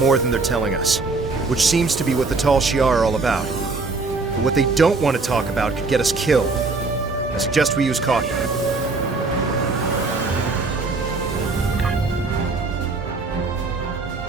than they're telling us, which seems to be what the Tal Shiar are all about. But what they don't want to talk about could get us killed. I suggest we use caution.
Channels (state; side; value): quieter; left; 3.8 dB